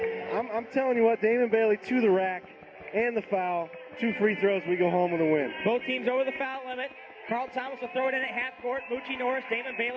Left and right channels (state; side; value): identical; both; correlation 1.00